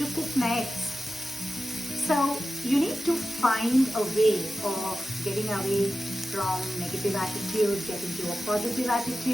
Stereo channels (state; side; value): noise; right; hum, 30 dB below the sound